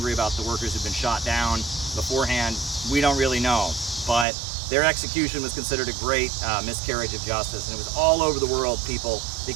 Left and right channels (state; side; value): drops out; left; at 4.2 s